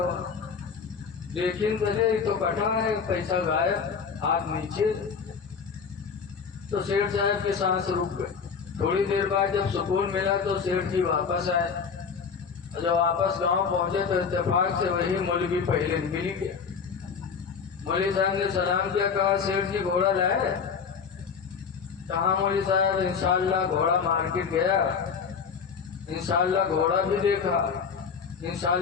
دیکھیں چلے تو کٹا ہے، پیسہ غائب، ہاتھ نیچے۔ تو سیٹھ صاحب کی سانس رک گئے۔ تھوڑی دیر بعد جب سکون ملا تو سیٹھ جی واپس آئے، جب واپس گاؤں پہنچے تو اتفاق سے وہی مولوی پہلے مل گیا۔ مولوی صاحب نے سلام کیا، کہا سیٹھ جی گھوڑا لائے؟ کہا مولوی صاحب انشاءاللہ گھوڑا مارکیٹ گیا، انشاءاللہ گھوڑا بھی دیکھا،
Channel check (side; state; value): right; quieter; 6.0 dB